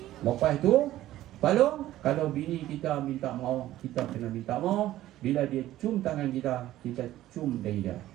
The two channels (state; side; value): quieter; left; 14.4 dB